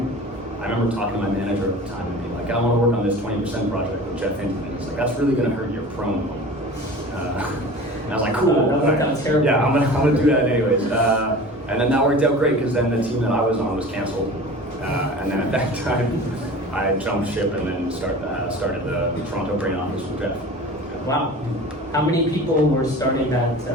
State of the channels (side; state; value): both; normal; correlation 0.38